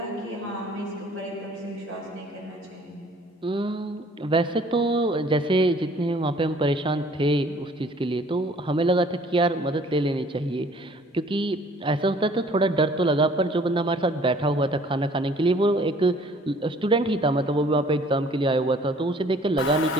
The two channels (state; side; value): normal; both; correlation 0.55